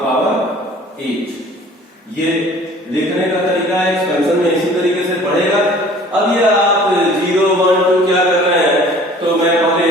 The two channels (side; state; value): both; normal; correlation 0.49